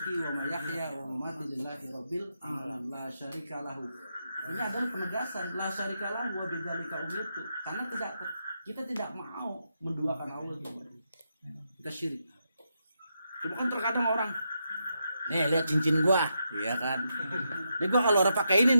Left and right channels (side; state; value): both; inverted; correlation -0.83